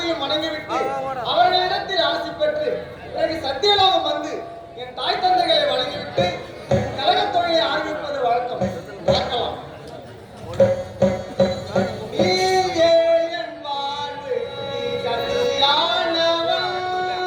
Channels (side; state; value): both; identical; correlation 1.00